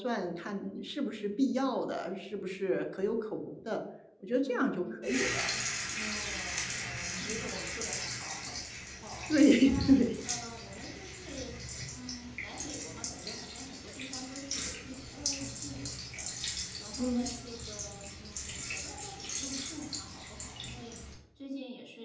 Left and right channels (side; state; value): both; identical; correlation 1.00